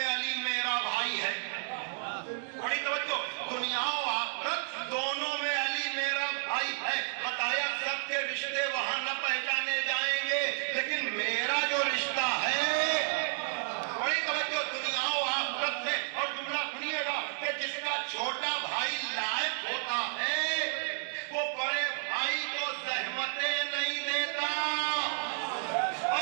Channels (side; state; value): left; silent; digital silence